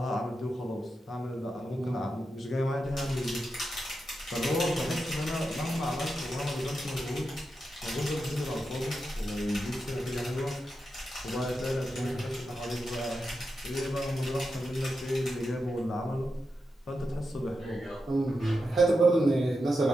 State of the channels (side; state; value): both; normal; correlation 0.88